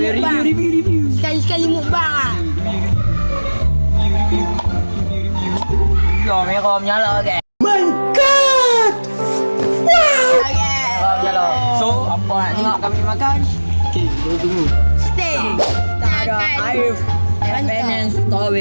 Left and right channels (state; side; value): inverted; both; correlation -1.00